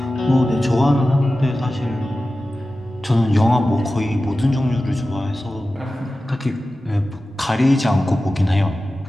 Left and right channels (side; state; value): both; normal; correlation 0.95